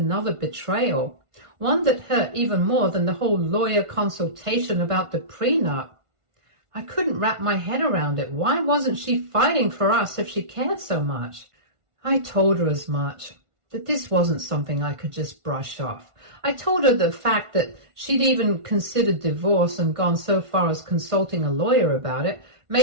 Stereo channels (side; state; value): left; late; 1.5 ms